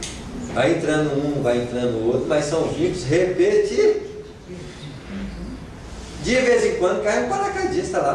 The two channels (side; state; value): both; identical; correlation 1.00